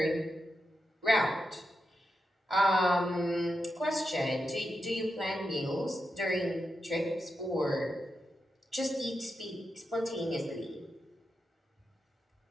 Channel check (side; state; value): both; normal; correlation 0.87